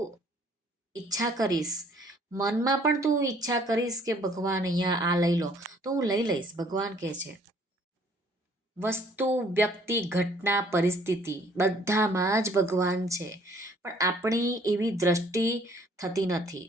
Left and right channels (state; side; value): normal; both; correlation 0.59